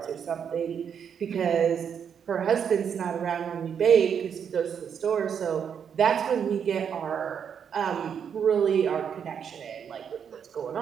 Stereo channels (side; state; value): left; quieter; 7.6 dB